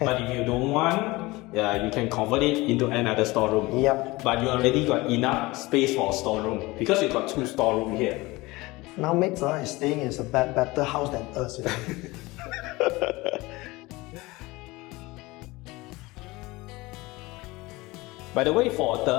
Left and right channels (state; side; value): quieter; right; 21.5 dB